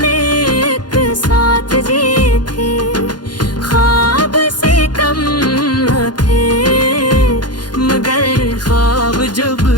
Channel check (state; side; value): late; right; 0.70 ms